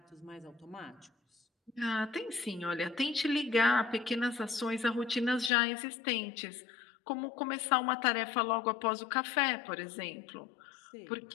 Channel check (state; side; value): drops out; right; at 5.5 s